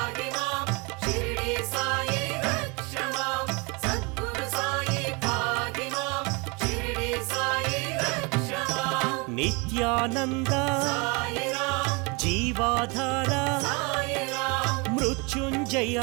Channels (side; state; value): left; quieter; 29.3 dB